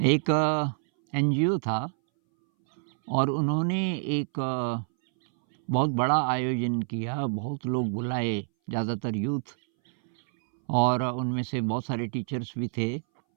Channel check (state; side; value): silent; left; 60 dB below the other